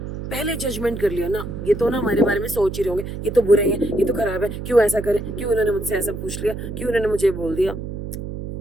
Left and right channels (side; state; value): right; noise; hum, 7 dB below the sound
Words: पहले जजमेंट कर लिया ना, ये तो ना हमारे बारे में सोच ही रहे होंगे, ये तो बुरे हैं, ये तो खराब है, क्यों ऐसा करे, क्यों उन्होंने मुझसे ऐसा पूछ लिया, क्यों उन्होंने मुझे बोल दिया.